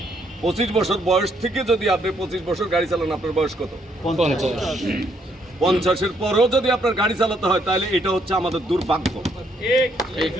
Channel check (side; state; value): both; normal; correlation 0.71